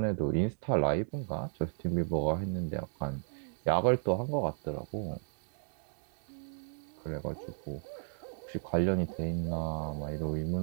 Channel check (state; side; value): silent; left; 55 dB below the other